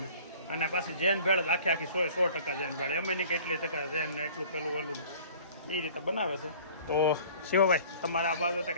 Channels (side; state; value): both; inverted; correlation -0.49